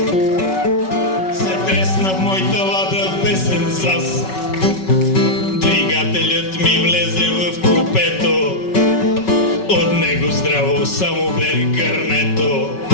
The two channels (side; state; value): right; late; 5.3 ms